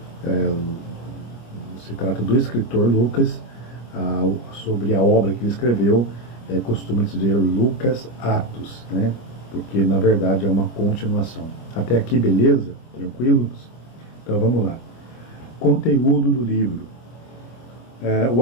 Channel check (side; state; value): right; late; 25 ms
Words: do escritor Lucas, sobre a obra que ele escreveu, costuma dizer Lucas Atos, né? Porque na verdade é uma continuação. Até aqui, beleza? Tranquilos? Então vamos lá. Conteúdo do livro. O